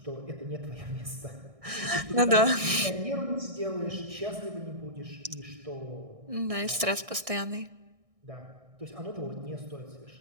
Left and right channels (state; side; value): late; left; 1.6 ms